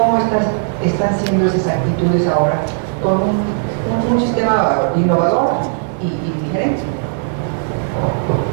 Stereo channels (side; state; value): left; silent; 56 dB below the other